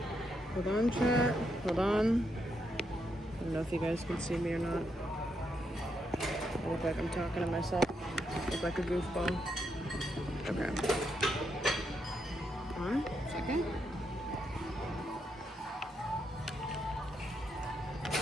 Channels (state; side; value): normal; both; correlation 0.80